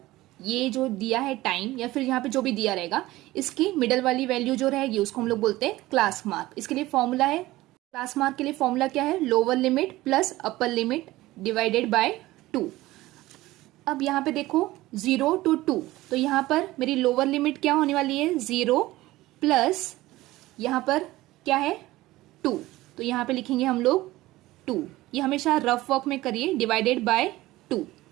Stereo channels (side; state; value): left; quieter; 17.7 dB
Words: ये जो दिया है टाइम या फिर यहाँ पे जो भी दिया रहेगा इसकी मिडल वाली वैल्यू जो रहेगी उसको हम लोग बोलते हैं क्लास मार्क। इसके लिए फॉर्मूला है, क्लास मार्क के लिए फॉर्मूला क्या है, lower limit plus upper limit divided by 2। अब यहाँ पे देखो 0 to 2, तो यहाँ पर मेरी लोअर लिमिट क्या होने वाली है 0 प्लस यहाँ पर क्या है 2, तो यहाँ पे लिखेंगे हम लोग 2। ये हमेशा रफ वर्क में करिए, डिवाइडेड बाय 2।